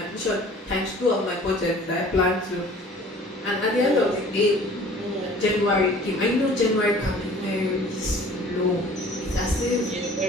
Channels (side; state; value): both; normal; correlation 0.49